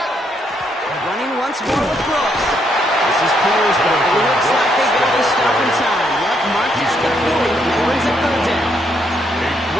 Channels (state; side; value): normal; both; correlation 0.74